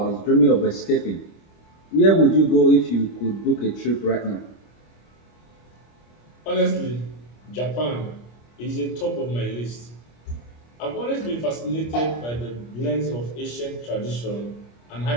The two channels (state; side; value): late; right; 25 ms